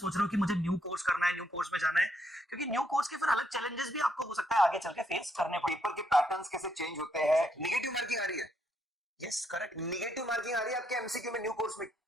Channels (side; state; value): both; normal; correlation 0.75